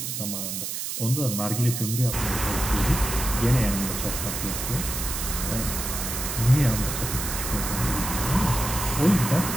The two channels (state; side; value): noise; right; hiss, 4 dB below the sound